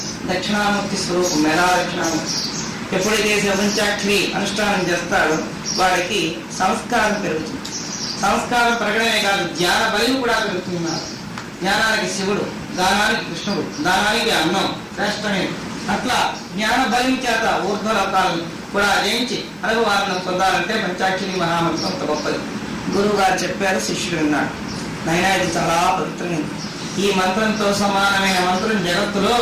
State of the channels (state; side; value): identical; both; correlation 1.00